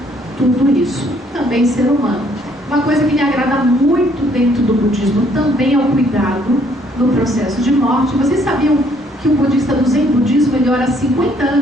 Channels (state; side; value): normal; both; correlation 0.65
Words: tudo isso. Também ser humano. Uma coisa que me agrada muito dentro do budismo também é o cuidado no processo de morte. Vocês sabiam que o budista do Zen budismo ele ora 50